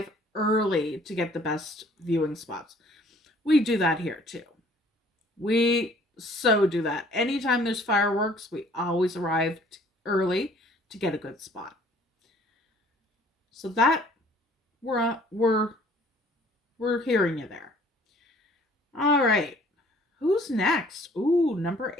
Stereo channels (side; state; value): both; normal; correlation 0.56